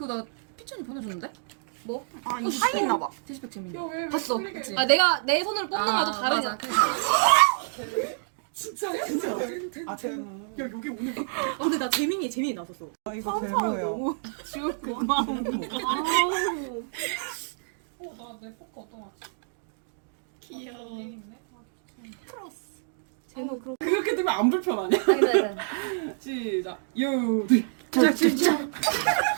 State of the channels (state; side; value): silent; left; digital silence